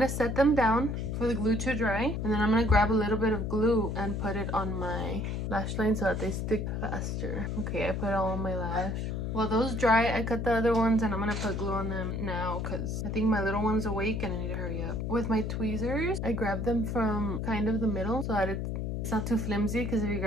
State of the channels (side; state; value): left; noise; hum, 2 dB below the sound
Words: set them down for the glue to dry, and then I'm gonna grab a little bit of glue and put it on my lash line so that they stick faster. Okay, I put it all on my lash. While those dry, I cut the other ones, and I'm gonna put glue on them now because I think my little one's awake and I need to hurry up. With my tweezers, I grab them from kind of the middle so that it's not too flimsy, because if you